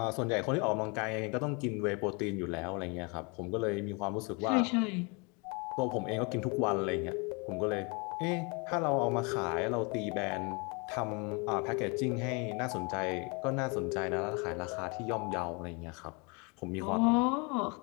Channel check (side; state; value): right; quieter; 31.5 dB